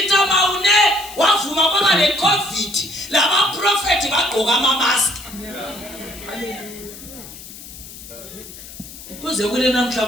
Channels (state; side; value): noise; left; hiss, 15 dB below the sound